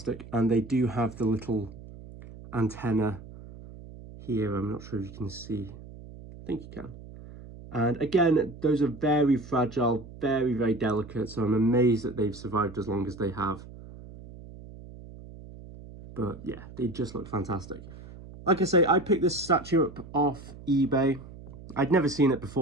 and they do have the little antenna here. I'm not sure if you can see. I think you can. And again, those are very fragile, very, very delicate, so I'm amazed that they've survived as long as they have. But yeah, they just look fantastic. Like I say, I picked this statue up off eBay. I'd never seen it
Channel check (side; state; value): right; noise; hum, 16 dB below the sound